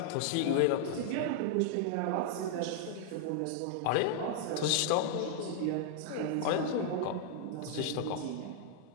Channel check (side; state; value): both; different; correlation -0.01